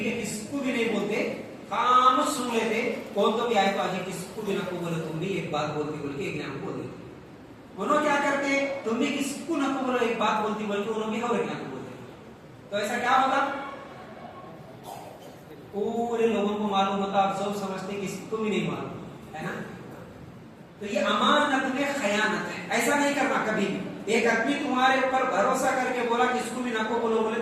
ہے کس کو بھی نہیں بولتے کام سن لیتے کون تو بھی آئے تو آج کس کو بھی نہ کو بولے تم بھی ایک بات بولتی بول کے ایک نام بول دیتے. انہوں کیا کرتے تم بھی کس کو نہ کو بولو ایک بات بولتی بول کے انہوں بھی اور ایک نام بولتے. تو ایسا کیا ہوتا پورے لوگوں کو معلوم ہوتا, آپ سب سمجھتے کسی کو بھی نہیں معلوم ہے نا. تو یہ امانت میں خیانت ہے, ایسا نہیں کرنا کبھی بھی. ایک آدمی تمہارے اوپر بھروسہ کر کے بولا کہ اس کو بھی نہ کو بولو بولے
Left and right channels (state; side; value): identical; both; correlation 1.00